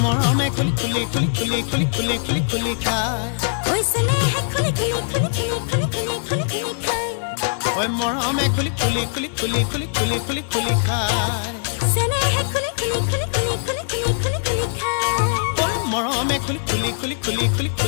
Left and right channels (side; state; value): right; silent; digital silence